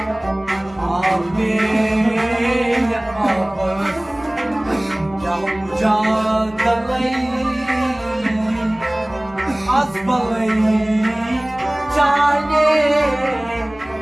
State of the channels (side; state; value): left; noise; hum, 23 dB below the sound